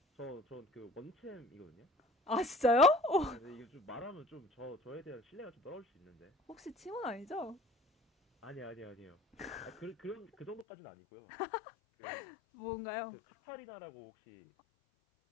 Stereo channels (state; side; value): drops out; right; at 10.7 s